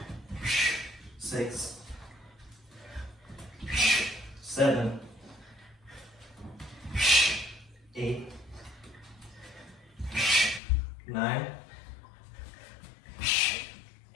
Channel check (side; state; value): right; drops out; at 10.6 s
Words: 6, 7, 8, 9,